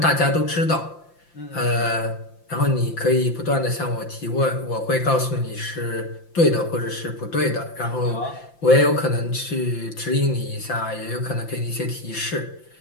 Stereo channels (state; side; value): late; right; 5.8 ms